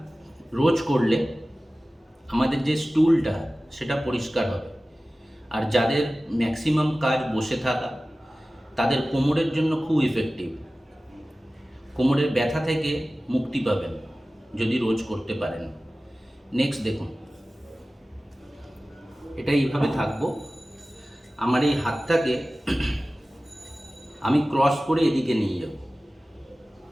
রোজ করলে আমাদের যে স্টুলটা সেটা পরিষ্কার হবে। আর যাদের ম্যাক্সিমাম কাজ বসে থাকা, তাদের কোমরের জন্য খুব ইফেক্টিভ, কোমরের ব্যথা থেকে মুক্তি পাবেন যদি রোজ করতে পারেন। নেক্সট দেখুন, এটা এইভাবে থাকবো, আমার এই হাতটাকে আমি ক্রস করে এদিকে নিয়ে যাব,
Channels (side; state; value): both; normal; correlation 0.96